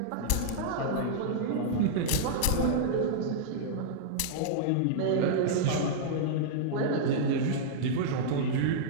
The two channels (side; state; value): both; different; correlation -0.02